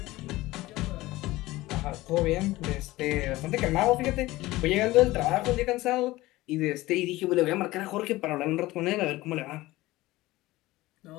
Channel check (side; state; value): right; quieter; 18.5 dB